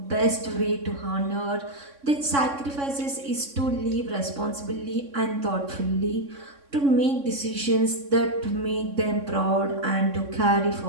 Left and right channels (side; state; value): left; late; 3.6 ms